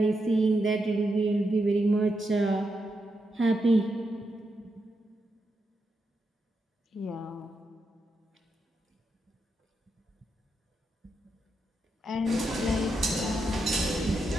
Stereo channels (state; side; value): normal; both; correlation 0.84